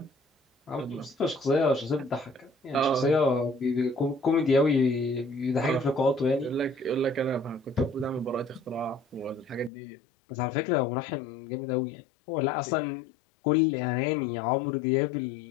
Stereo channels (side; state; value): right; drops out; at 9.7 s